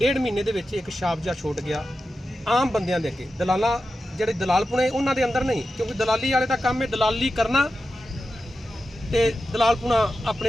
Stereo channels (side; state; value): both; normal; correlation 0.91